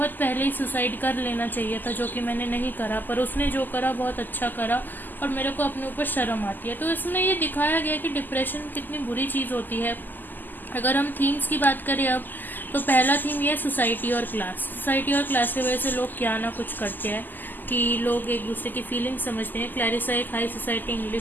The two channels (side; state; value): right; late; 0.087 ms